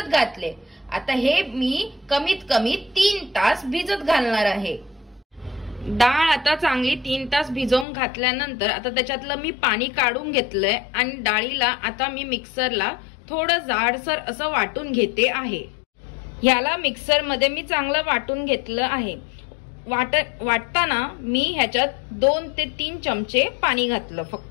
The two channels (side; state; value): right; drops out; at 7.9 s